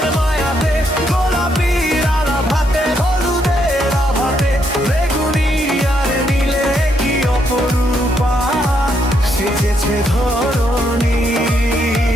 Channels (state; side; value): normal; both; correlation 0.76